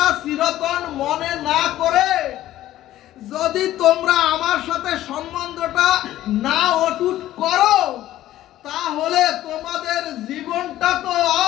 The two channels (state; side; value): quieter; right; 14.0 dB